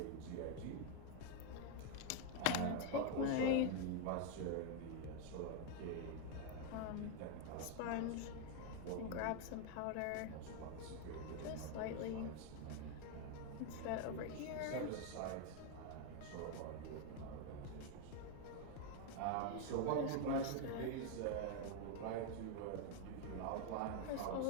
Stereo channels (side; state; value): both; different; correlation 0.01